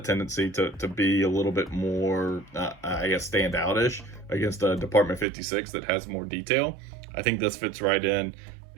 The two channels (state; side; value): drops out; left; at 5.2 s